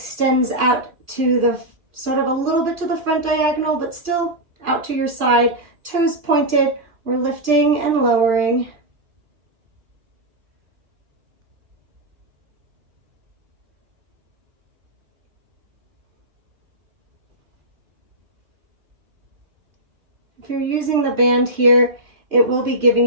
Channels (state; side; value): late; left; 2.6 ms